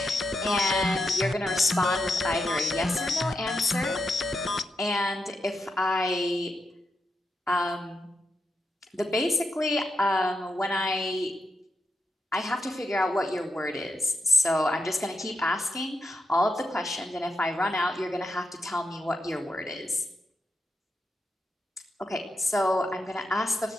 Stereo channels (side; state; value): both; normal; correlation 0.85